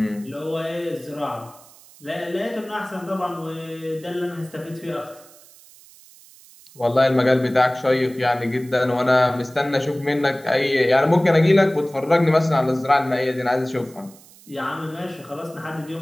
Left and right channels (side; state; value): right; noise; hiss, 24 dB below the sound